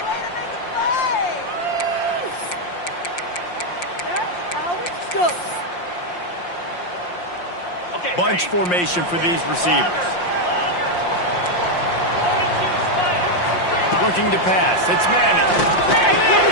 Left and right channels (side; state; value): right; late; 5.7 ms